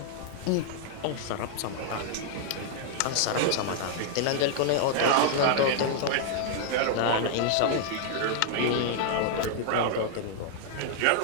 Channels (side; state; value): both; different; correlation 0.00